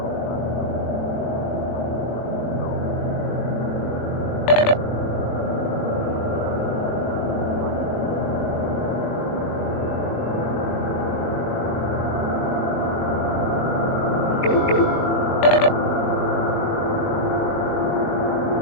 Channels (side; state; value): right; late; 21 ms